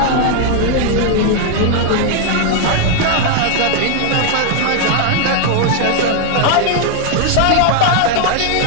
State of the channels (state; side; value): different; both; correlation 0.00